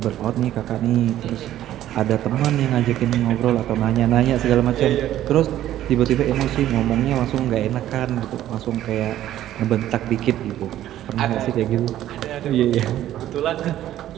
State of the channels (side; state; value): left; quieter; 12.7 dB